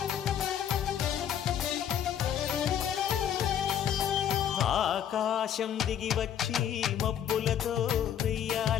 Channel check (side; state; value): right; quieter; 9.5 dB